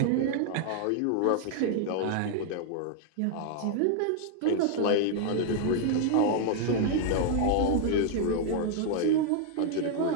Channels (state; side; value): different; both; correlation 0.00